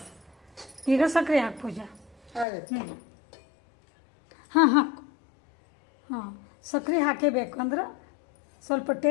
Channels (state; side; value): drops out; right; at 2.5 s